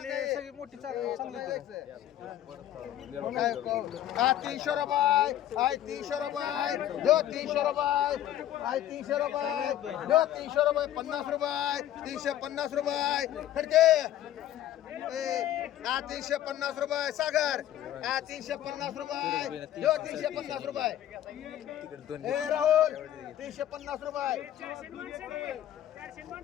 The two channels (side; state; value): right; quieter; 12.1 dB